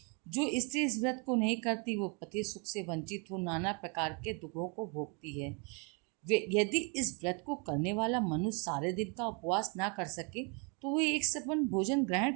जो स्त्री इस व्रत को नहीं करती वो पति सुख से वंचित हो नाना प्रकार के दुखों को भोगती है। यदि इस व्रत को करने वाला मनुष्य सारे दिन का उपवास ना कर सके तो वह एक सपन भोजन ग्रहण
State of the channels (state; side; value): quieter; left; 34.4 dB